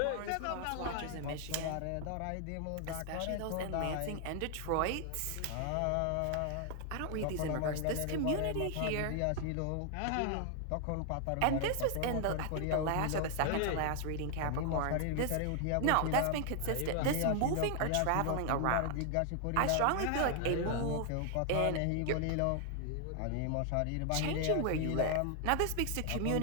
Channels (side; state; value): both; different; correlation 0.00